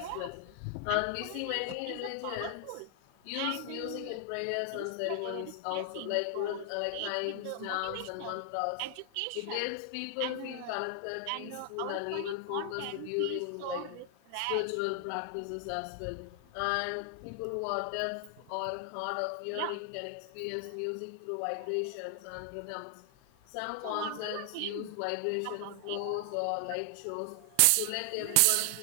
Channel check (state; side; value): different; both; correlation 0.00